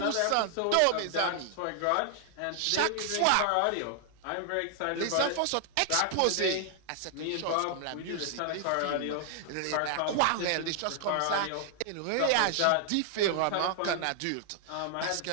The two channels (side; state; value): both; different; correlation 0.00